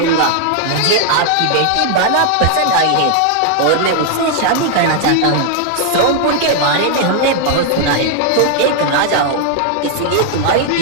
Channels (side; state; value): both; different; correlation 0.00